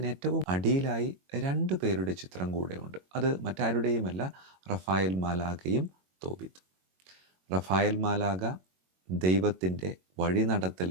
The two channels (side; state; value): left; late; 22 ms